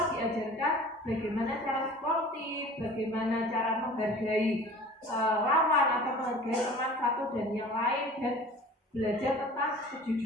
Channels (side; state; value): both; normal; correlation 0.43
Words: diajarkan bagaimana cara sportif, bagaimana cara menghargai lawan atau menghargai teman satu dan yang lain, dan belajar tentang